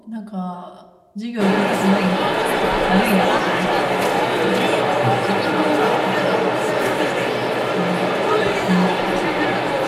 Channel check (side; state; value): both; identical; correlation 1.00